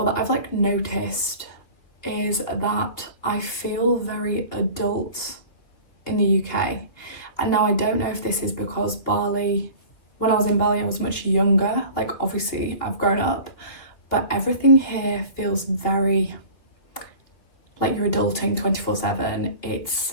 that I've like noticed, is that I feel very adult in the UK. And now I don't know if this is because Bali, when I was in Bali, I was much younger. Like obviously I've grown up, but everything here feels very like you're adulting 24/7. It's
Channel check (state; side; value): late; right; 3.0 ms